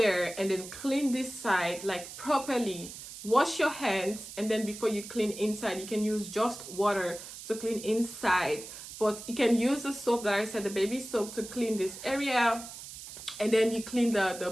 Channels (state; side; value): noise; right; hiss, 12 dB below the sound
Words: and then clean this side like properly. Wash your hands, and then before you clean inside, you can use just water to clean inside. But you can use the soap that I said, the baby soap, to clean this area. And then you clean